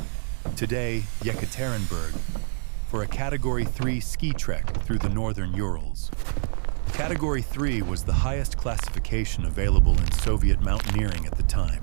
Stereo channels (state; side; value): silent; left; digital silence